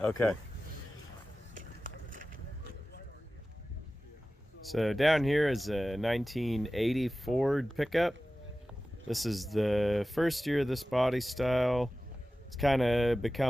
Okay. So down here is a 1980 Ford pickup. This is the first year of this body style. It's kind of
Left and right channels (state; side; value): normal; both; correlation 0.96